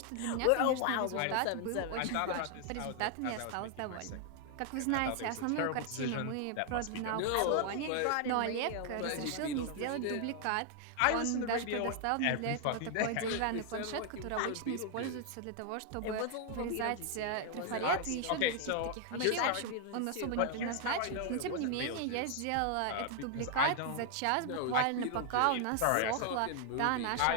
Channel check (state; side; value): different; both; correlation 0.00